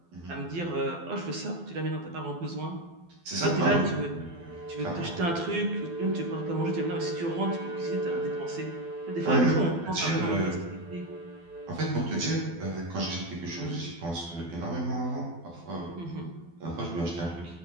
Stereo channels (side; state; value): left; late; 12 ms